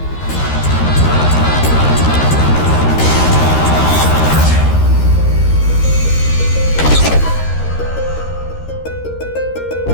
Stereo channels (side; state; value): right; late; 13 ms